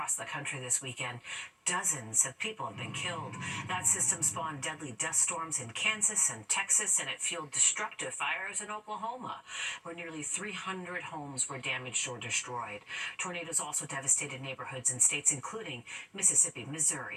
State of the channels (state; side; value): identical; both; correlation 1.00